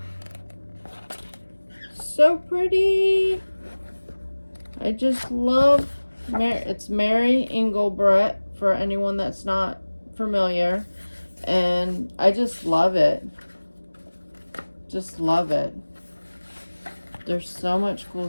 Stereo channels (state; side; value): inverted; both; correlation -1.00